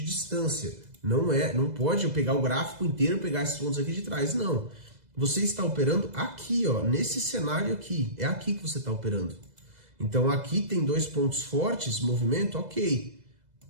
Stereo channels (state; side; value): late; left; 2.0 ms